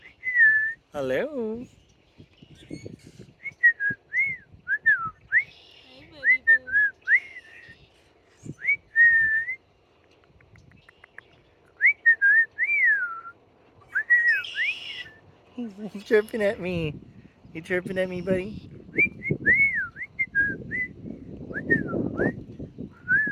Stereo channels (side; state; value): both; identical; correlation 1.00